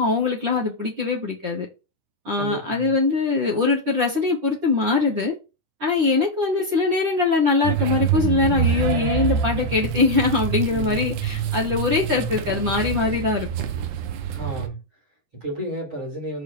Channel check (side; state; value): left; late; 10 ms